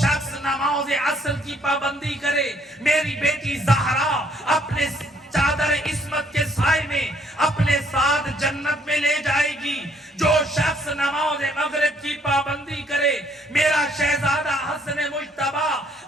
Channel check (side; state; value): both; normal; correlation 0.65